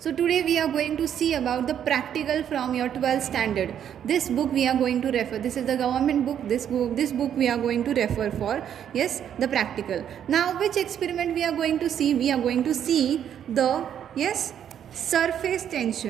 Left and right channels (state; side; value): quieter; left; 9.4 dB